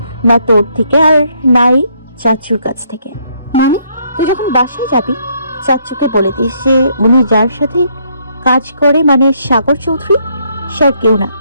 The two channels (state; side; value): inverted; both; correlation -0.70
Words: না তোর থেকে, আর নাই চাচুর কাছ থেকে। মানে? তুই যখন বাসায় যাবি চাচুকে বলে দিস যে উনি যার সাথে কাজ করে, মানে সাগর চৌধুরী, সে আর কেউ না,